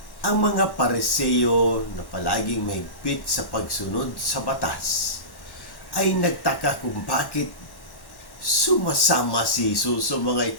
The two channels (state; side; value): late; right; 1.1 ms